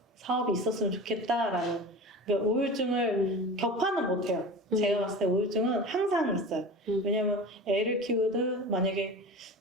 사업이 있었으면 좋겠다라는. 그러니까 우울증을 격파는 못해요. 제가 봤을 때 우울증은 항상 있어요. 왜냐면 애를 키우든 만약에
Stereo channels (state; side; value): normal; both; correlation 0.33